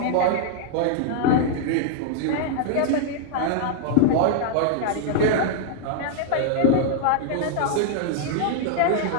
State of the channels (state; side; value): different; both; correlation 0.00